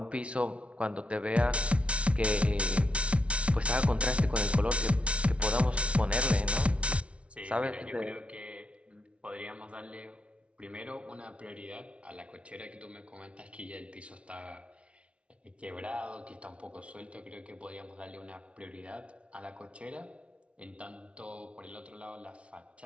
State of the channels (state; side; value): late; left; 0.061 ms